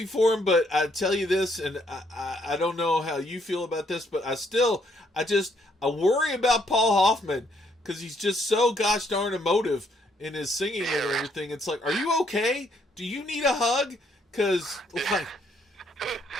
for him, but I tell you this, and I don't know how you feel about this, but I worry about Paul Hoffman because he's just so gosh darn emotive in his singing and everything. It's like, are you okay? Do you need a hug? Because like,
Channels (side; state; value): both; normal; correlation 0.70